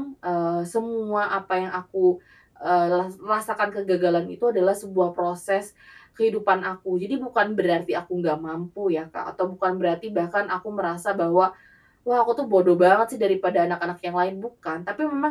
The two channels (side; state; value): both; identical; correlation 1.00